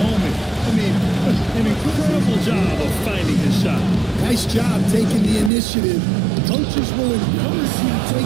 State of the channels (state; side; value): drops out; left; at 5.5 s